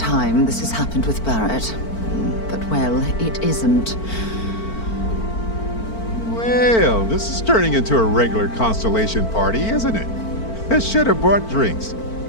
this has happened with Barrett. But, well, it isn't. Well, this is turning into a regular Constellation party, isn't it? I should have brought drinks.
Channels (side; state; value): right; late; 4.5 ms